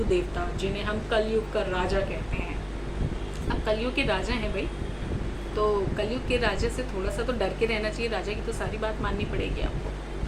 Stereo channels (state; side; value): identical; both; correlation 1.00